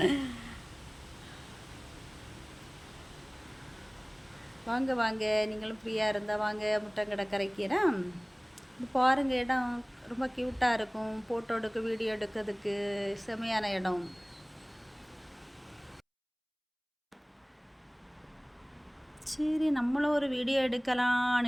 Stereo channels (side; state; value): both; identical; correlation 1.00